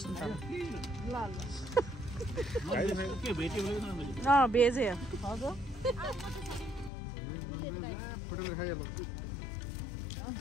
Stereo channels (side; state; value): right; drops out; at 6.9 s